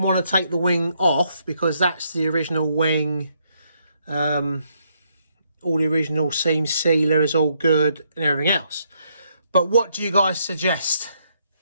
want to take the wing off because that's the original wing. All the original seam sealer is all good and everything else. But what do you guys suggest?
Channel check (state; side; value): inverted; both; correlation -0.75